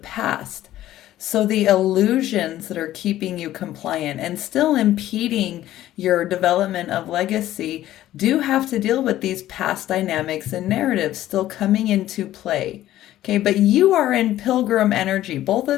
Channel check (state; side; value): quieter; right; 13.8 dB